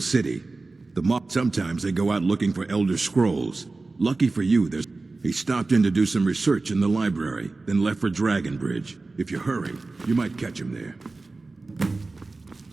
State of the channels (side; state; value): left; quieter; 3.5 dB